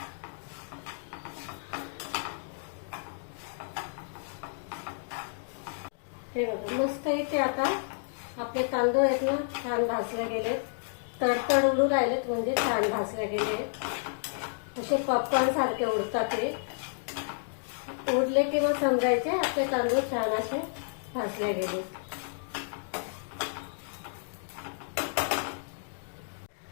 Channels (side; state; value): right; silent; digital silence